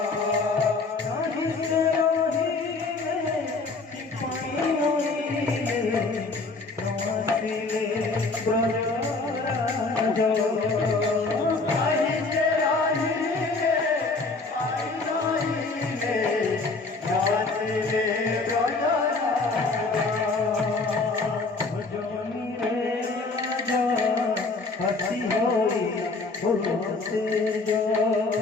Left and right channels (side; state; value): right; quieter; 3.7 dB